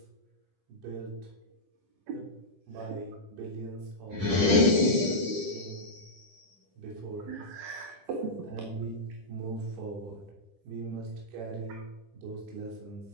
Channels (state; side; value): late; left; 10 ms